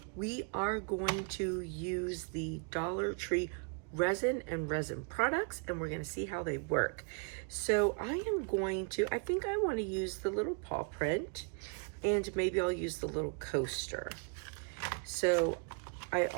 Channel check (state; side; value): quieter; left; 39.3 dB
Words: we are going to use the Dollar Tree resin and resin products, and we're going to see how they work. So I think I want to use the little paw print, and maybe I'll use the little coaster. So I